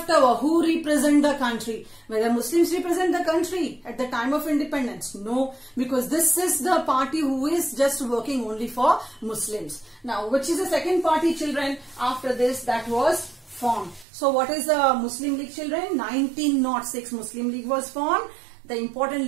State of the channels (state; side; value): drops out; left; at 14.1 s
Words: over. Who represent the country? Whether Muslims represent the country at the time of independence? No, because this is the party who is just working only for Muslims. Now, which is the second party, children, after this that was formed? So what is the Muslim League, children? 1906 Muslim League was formed. The important